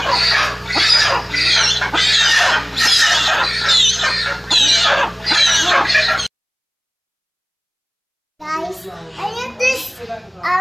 Guys, I have this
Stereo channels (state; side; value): identical; both; correlation 1.00